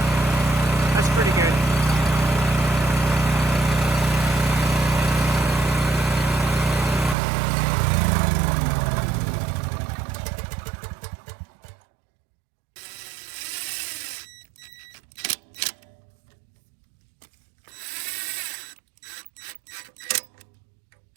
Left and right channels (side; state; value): left; drops out; at 7.2 s